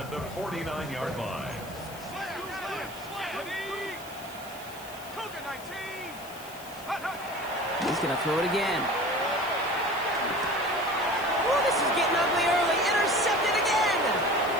the 49-yard line. He's going to throw it again. Oh, this is getting ugly early. Intercepted again.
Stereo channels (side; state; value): left; noise; hiss, 17 dB below the sound